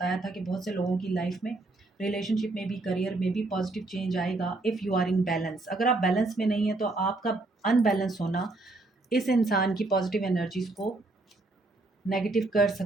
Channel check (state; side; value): quieter; left; 3.1 dB